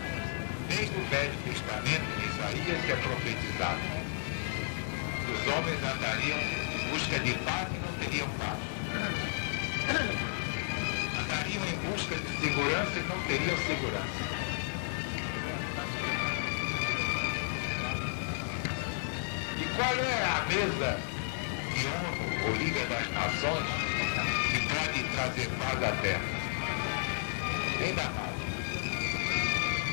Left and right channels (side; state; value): right; silent; 55 dB below the other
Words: Desde o Velho Testamento, em Isaías, que é profetizado que os homens andariam em busca de paz e não teriam paz. Andariam em busca de segurança e não teriam segurança. E qual é a mesa de ONU, ou Liga das Nações, que pode trazer paz à Terra? Ainda mais.